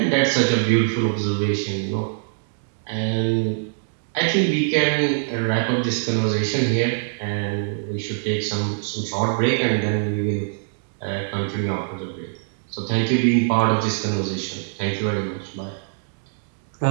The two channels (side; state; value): left; silent; digital silence